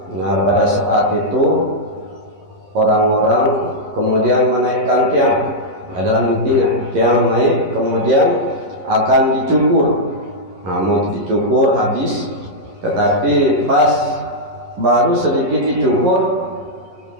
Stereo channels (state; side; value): late; left; 11 ms